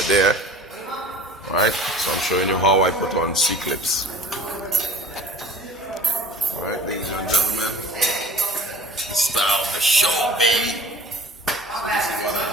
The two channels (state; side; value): normal; both; correlation 0.46